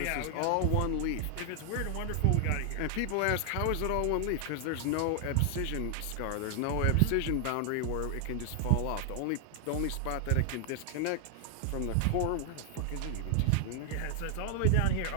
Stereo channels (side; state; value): both; different; correlation 0.00